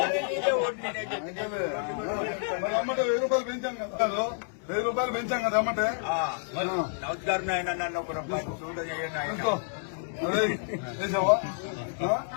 అమ్మటే 1000 రూపాయలు పెంచాం కదా 1000 రూపాయలు పెంచాం కదా అమ్మటే నమస్కారం ఆయన నన్ను ఒక రూపాయి చేసావా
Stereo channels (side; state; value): right; silent; digital silence